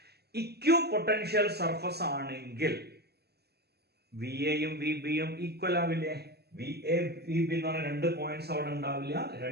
Equi potential surface ആണെങ്കിൽ V എയും V ബിയും equal ആവില്ലേ? V A V B എന്ന് പറഞ്ഞ രണ്ട് പോയിന്റ്സ് അവിടെ ഉണ്ടാവില്ല,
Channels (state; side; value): late; left; 0.47 ms